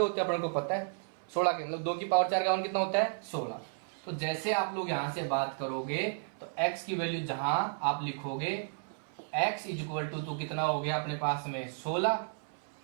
होते हैं अपन को पता है, 16 के मतलब 2 की पावर 4 का मान कितना होता है 16। तो जैसे आप लोग यहां से बात करोगे तो x की वैल्यू जहां आप लिखोगे x इज इक्वल टू कितना हो गया अपने पास में 16।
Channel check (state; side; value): silent; left; 56 dB below the other